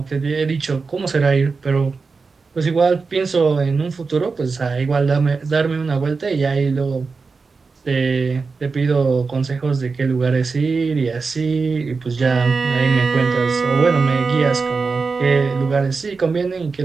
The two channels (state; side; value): quieter; left; 4.5 dB